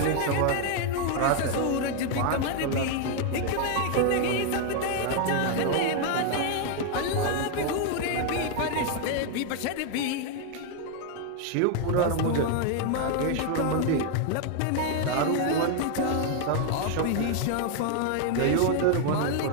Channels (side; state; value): both; different; correlation 0.00